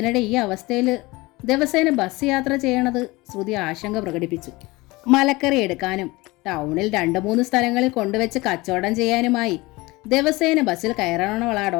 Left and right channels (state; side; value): quieter; right; 22.0 dB